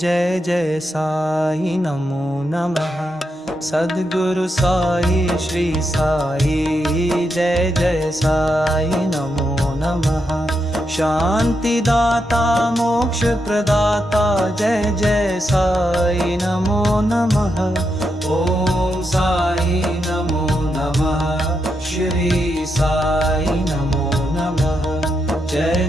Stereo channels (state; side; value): normal; both; correlation 0.83